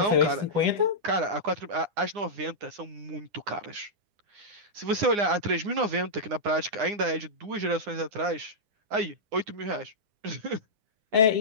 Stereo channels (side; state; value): left; late; 9.8 ms